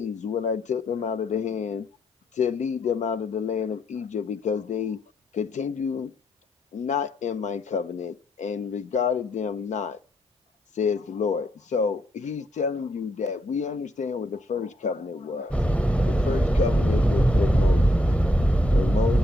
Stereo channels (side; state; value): both; normal; correlation 0.74